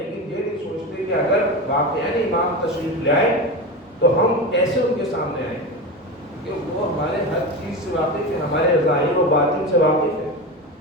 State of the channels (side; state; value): both; normal; correlation 0.23